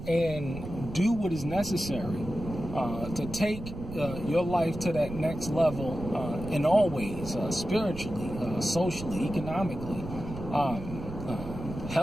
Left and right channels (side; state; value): right; noise; rumble, 11 dB below the sound